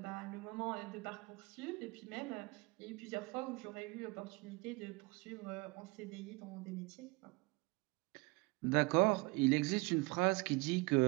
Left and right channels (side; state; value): left; quieter; 26.2 dB